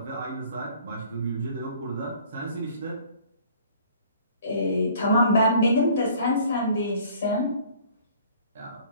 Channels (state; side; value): inverted; both; correlation -0.53